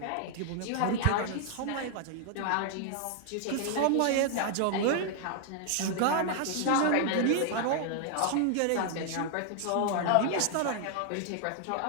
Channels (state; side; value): different; both; correlation 0.00